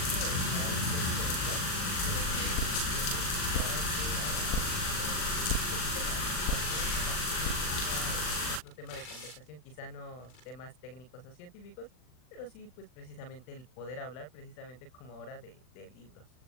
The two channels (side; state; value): right; late; 39 ms